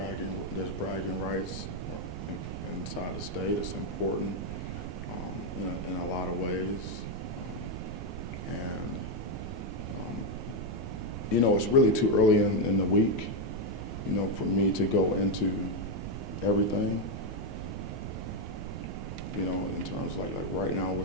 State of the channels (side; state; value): right; noise; rumble, 7 dB below the sound